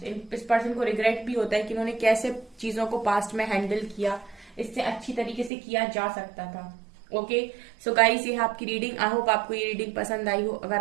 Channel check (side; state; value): left; drops out; at 5.5 s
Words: इस पर्सन को रिग्रेट भी होता है कि उन्होंने कैसे चीजों को पास्ट में हैंडल किया, इससे अच्छी तरीके से किया जा सकता था। ओके, सो गाइस ये है आपकी रीडिंग। आई होप आपको ये रीडिंग पसंद आई हो।